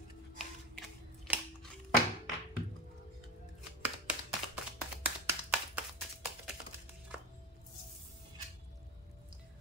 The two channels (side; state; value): both; normal; correlation 0.24